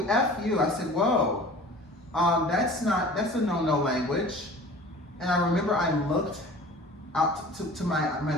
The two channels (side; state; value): both; normal; correlation 0.43